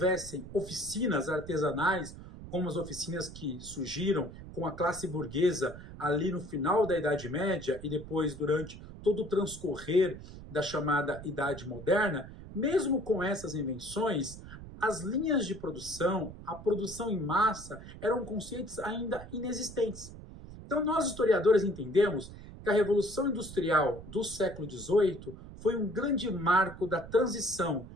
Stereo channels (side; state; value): right; noise; rumble, 14 dB below the sound